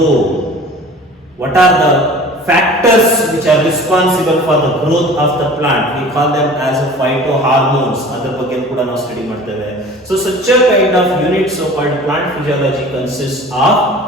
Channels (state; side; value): normal; both; correlation 0.43